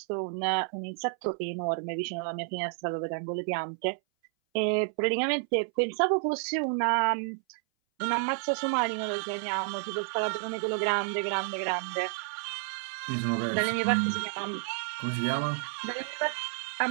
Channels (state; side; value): silent; left; 58 dB below the other